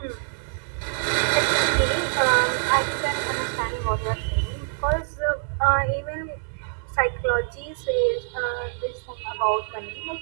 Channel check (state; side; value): silent; left; digital silence